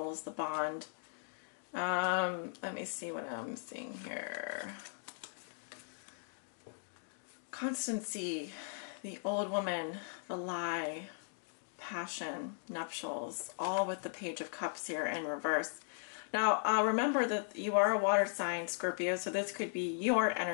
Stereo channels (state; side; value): silent; right; digital silence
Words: the bond. Let me see what I'm seeing here. Constancy, the old woman, the lie, passion, nuptials, all with the Page of Cups here in reverse. Now, remember that you are a water sign, Scorpio, so this could be your